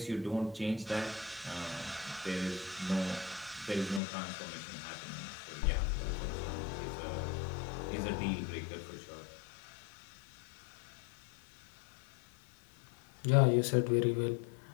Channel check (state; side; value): drops out; right; at 4.0 s